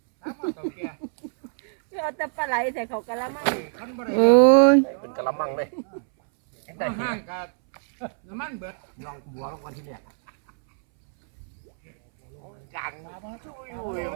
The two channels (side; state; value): left; silent; 62 dB below the other